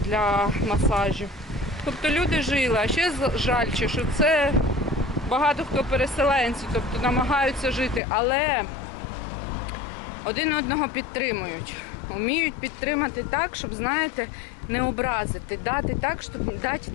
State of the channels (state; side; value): drops out; right; at 8.0 s